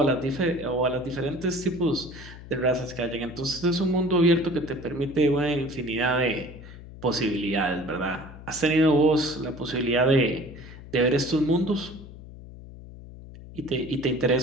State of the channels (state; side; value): noise; left; hum, 16 dB below the sound